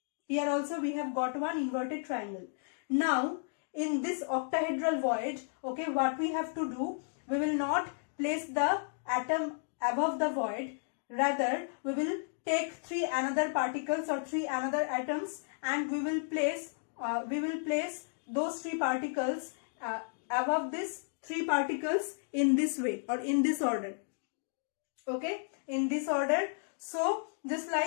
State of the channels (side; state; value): right; silent; digital silence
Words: Here also we have got one inverted triangle. Now in this octahedral void, okay, what we have to do, we will not place the atom above the void, rather we will take three another particles or three another atoms and we will place those three particles above these three particles in this way or in this order. Okay, in this order. So just